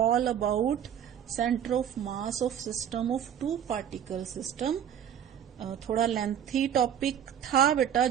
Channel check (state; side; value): quieter; left; 9.3 dB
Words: about centre of mass of system of 2 particle system. थोड़ा लेंथी टॉपिक था बेटा